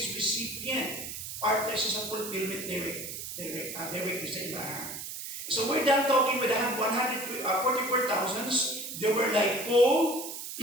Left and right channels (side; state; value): right; noise; hiss, 8 dB below the sound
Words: recipient, partner siya sa fulfillment direct sa ilahan. So we're done talking with the 144,000. They were like Paul,